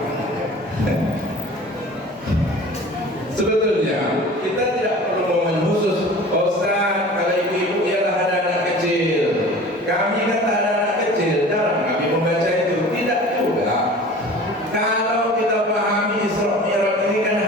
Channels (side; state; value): both; normal; correlation 0.41